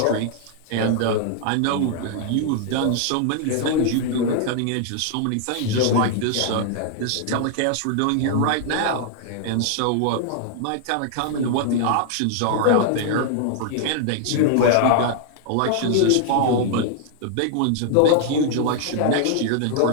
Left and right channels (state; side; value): different; both; correlation 0.00